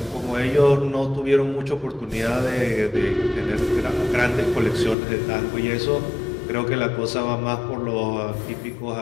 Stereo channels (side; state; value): right; drops out; at 5.0 s